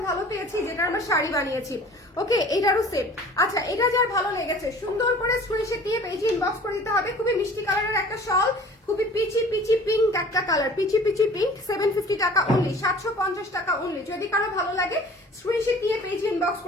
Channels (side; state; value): both; normal; correlation 0.46